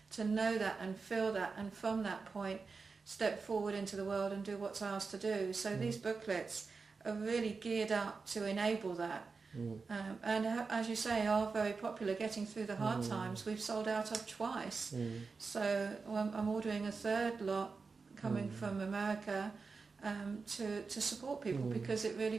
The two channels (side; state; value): left; quieter; 4.6 dB